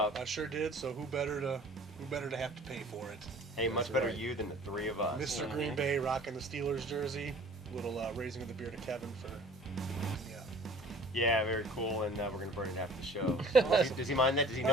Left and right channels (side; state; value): both; normal; correlation 0.48